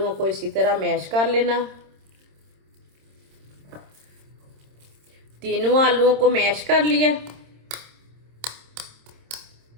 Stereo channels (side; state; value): left; late; 26 ms